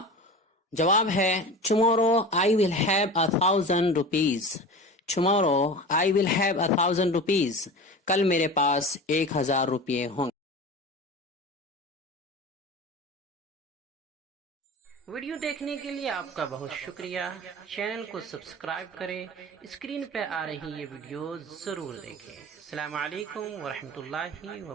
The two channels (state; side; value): normal; both; correlation 0.32